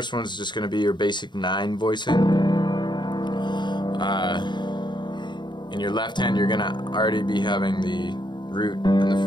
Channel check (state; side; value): late; right; 0.22 ms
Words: one is just going to be your basic 9 voicing. In your left hand, you're going to already be having the root and the